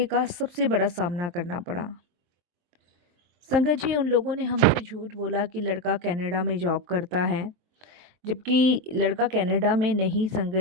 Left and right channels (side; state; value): left; late; 23 ms